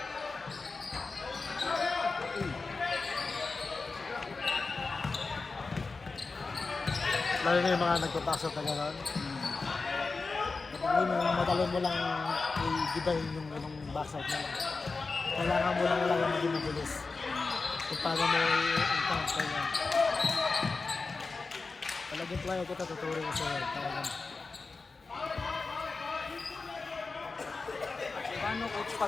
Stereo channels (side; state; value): right; quieter; 4.1 dB